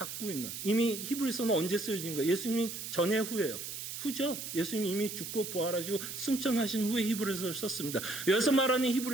있는, 이미 히브리서는 언제 쓰여진 거예요? 예수님 전에 후예요? 후죠. 예수님이 이미 죽고 부활하시고 승천하신 후에 히브리서를 썼습니다. 여기서 말하는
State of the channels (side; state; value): right; noise; hiss, 7 dB below the sound